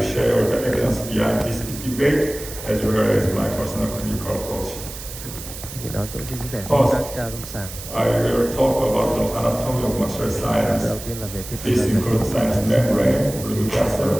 share the evidence behind this debate as well as my personal clinical approach. Thì đó tôi sẽ chia sẻ First, các ca lâm sàng. I will talk about the anatomy of maxillary sinus. Đầu tiên là về thuyết This includes sinus membrane, blood vessel,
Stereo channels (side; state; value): right; noise; hiss, 12 dB below the sound